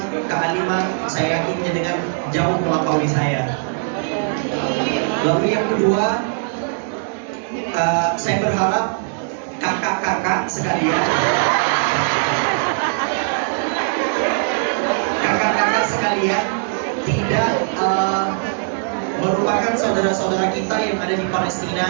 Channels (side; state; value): left; silent; digital silence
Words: kealiman, saya yakin dengan jauh melampaui saya. Lalu yang kedua, saya berharap kakak-kakak sekalian, tidak merupakan saudara-saudara kita yang ada di